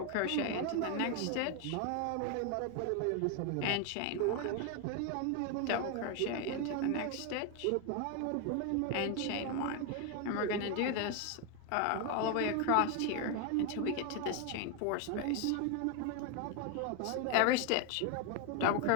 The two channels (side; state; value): both; different; correlation 0.01